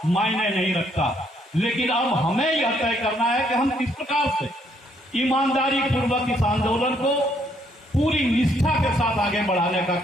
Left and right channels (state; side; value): normal; both; correlation 0.70